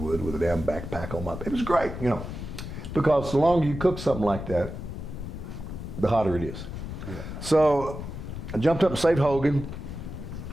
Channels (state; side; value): noise; left; rumble, 8 dB below the sound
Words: with a damn backpack on my. It was great, you know. Because the longer you cook something like that, the hotter it is. Yeah. So I jumped up and saved Hogan.